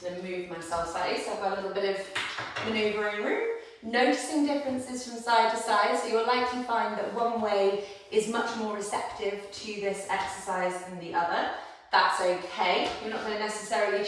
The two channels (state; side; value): identical; both; correlation 1.00